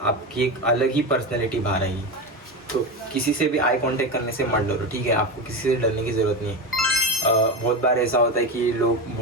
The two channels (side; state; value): both; normal; correlation 0.19